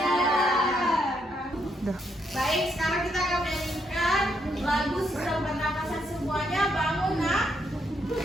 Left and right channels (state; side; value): normal; both; correlation 0.76